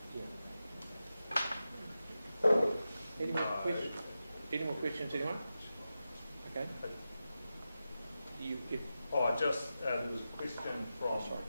Any more questions, anyone? Okay. There was a question from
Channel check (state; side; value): inverted; both; correlation -0.92